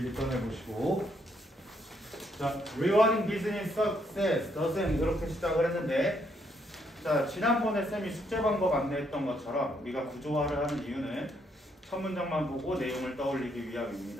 꺼내보시고. 자, Rewarding Business Success doesn't 이렇게 시작을 했는데, 자, 지난번에 쌤이 숙제 방법 안내했던 것처럼 우리가 구조화를 하는 이유는 첫 문장만 보고 내용을 떠올리기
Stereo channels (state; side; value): normal; both; correlation 0.73